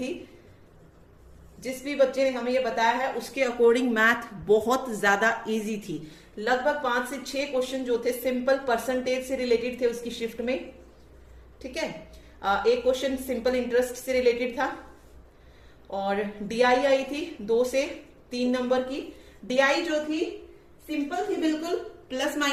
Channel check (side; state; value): both; identical; correlation 1.00